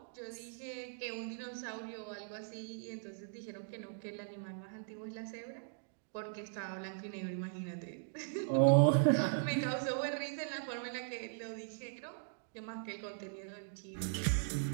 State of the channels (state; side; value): silent; left; digital silence